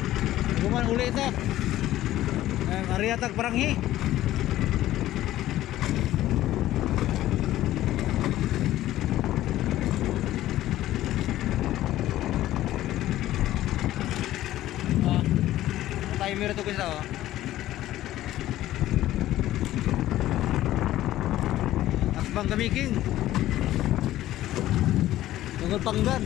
Guman uli ito. Ariatag paranghi. Timer ito guys oh. Bang Gamiking tungkol panggan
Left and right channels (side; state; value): right; quieter; 14.4 dB